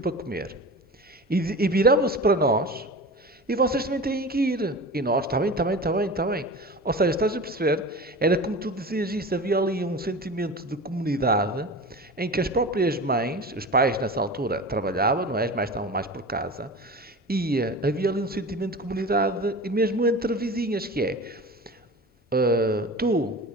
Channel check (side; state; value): both; normal; correlation 0.33